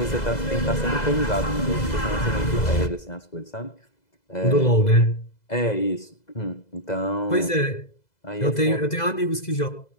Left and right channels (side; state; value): right; late; 2.0 ms